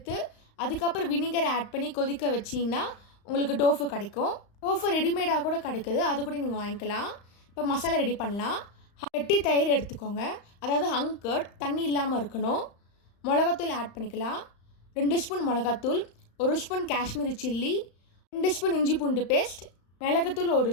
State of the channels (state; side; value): late; right; 35 ms